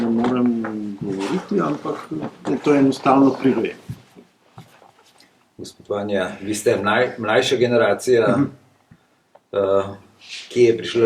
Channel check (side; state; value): both; identical; correlation 1.00